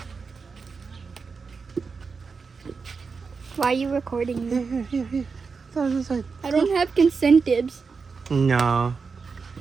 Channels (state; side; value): quieter; left; 5.0 dB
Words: Why are you recording me? Here. This side. I don't have consentives. No.